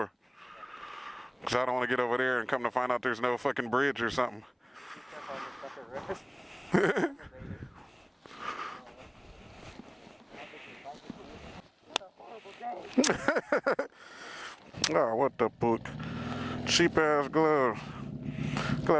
Because I don't want to get over there and come to find out there's no fucking bridge or something. Oh, what the fuck? Cheap ass glove.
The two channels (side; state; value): both; identical; correlation 1.00